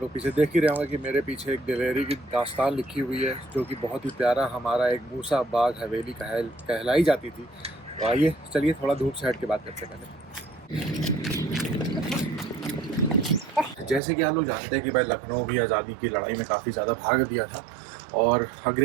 लोग पीछे देख ही रहे होंगे कि मेरे पीछे एक दिलेरी की दास्तान लिखी हुई है, जो कि बहुत ही प्यारा हमारा एक मूसा बाग हवेली कहलाई जाती थी। तो आइए चलिए थोड़ा धूप से हट के बात करते हैं पहले। जैसे कि आप लोग जानते हैं कि भाई लखनऊ भी आज़ादी की लड़ाई में काफ़ी ज़्यादा भाग दिया था, और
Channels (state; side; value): drops out; left; at 14.0 s